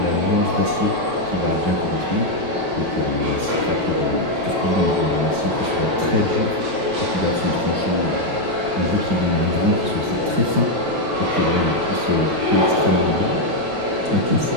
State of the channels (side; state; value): left; late; 9.2 ms